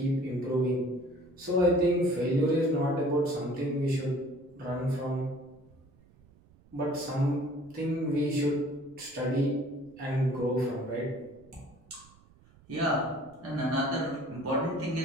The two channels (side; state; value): right; noise; rumble, 27 dB below the sound